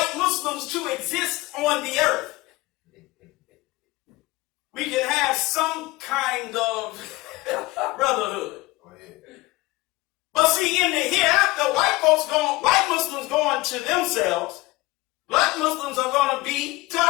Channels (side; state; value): right; quieter; 21.2 dB